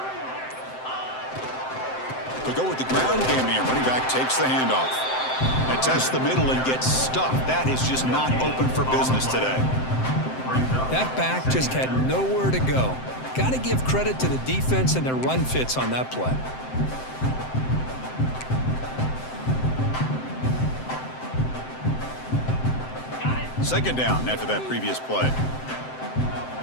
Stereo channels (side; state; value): right; late; 7.7 ms